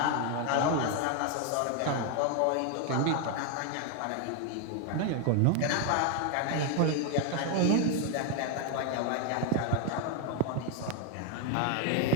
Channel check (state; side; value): different; both; correlation 0.01